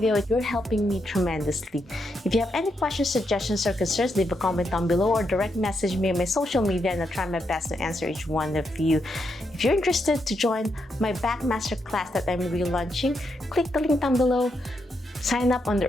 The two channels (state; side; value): normal; both; correlation 0.81